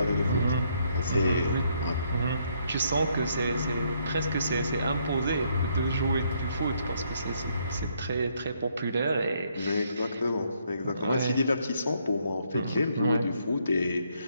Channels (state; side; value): inverted; both; correlation -0.71